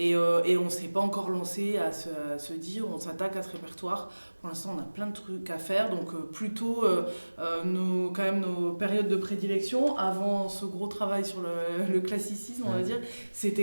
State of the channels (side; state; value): both; inverted; correlation -1.00